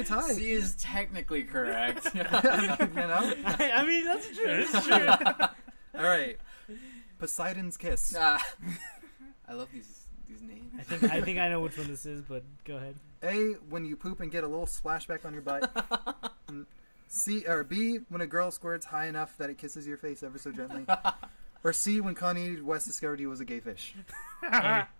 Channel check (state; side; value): inverted; both; correlation -1.00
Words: tie. C is technically correct. You know? I mean, that's true. It's true. All right. Poseidon's Kiss. I love these names. I think I know which one this is, but go ahead. A, when you poop and get a little splashback on your butt. C or B, when a girl squirts high enough that it kisses your face ever so gently. Or C, when Kanye West discovered he was a gay fish. A.